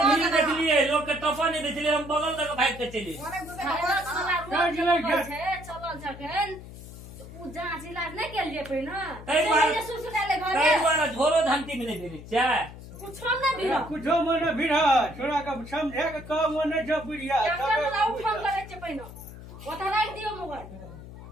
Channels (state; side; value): noise; left; hum, 15 dB below the sound